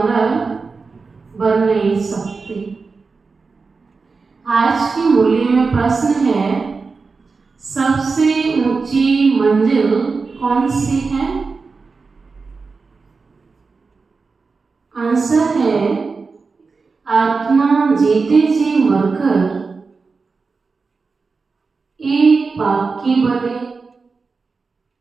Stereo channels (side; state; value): left; quieter; 4.5 dB